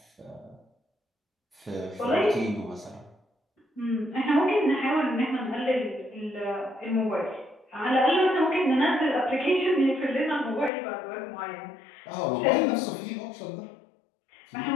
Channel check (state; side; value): drops out; right; at 10.7 s